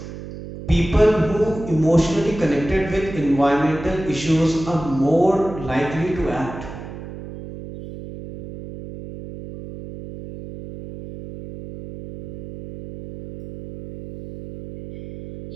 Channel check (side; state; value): right; noise; hum, 12 dB below the sound